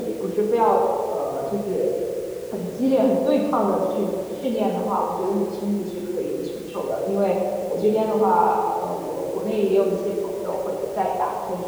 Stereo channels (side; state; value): both; identical; correlation 1.00